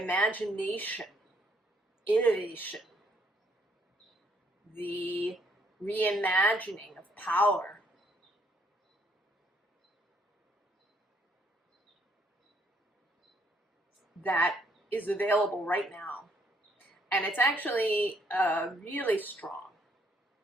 innovation, the reimagining of power. That is available right now. And it's actually really strong.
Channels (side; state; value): both; normal; correlation 0.69